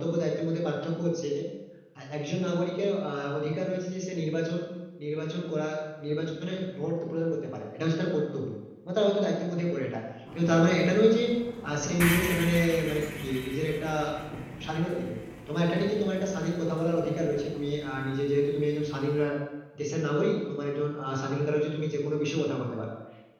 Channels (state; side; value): identical; both; correlation 1.00